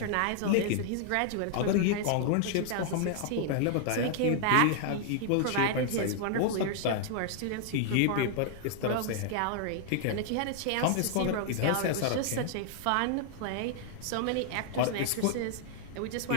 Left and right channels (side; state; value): both; different; correlation 0.00